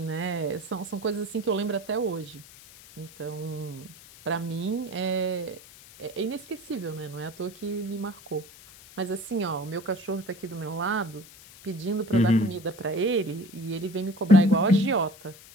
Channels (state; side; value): noise; left; hiss, 20 dB below the sound